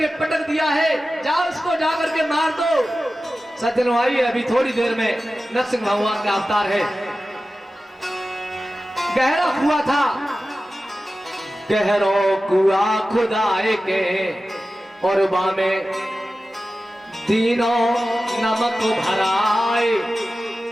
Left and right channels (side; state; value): both; normal; correlation 0.94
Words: पटक दिया है, जाओ उसको जाकर के मार दो। सज्जनों आइए, अभी थोड़ी देर में नरसिंह भगवान का अवतार है। गहरा कुआं था, गहरो कुआं खुदाए के और बामे तीनों नमक भराए।